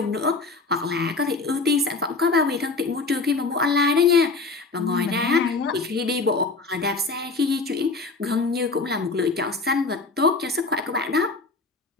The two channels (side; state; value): right; quieter; 3.9 dB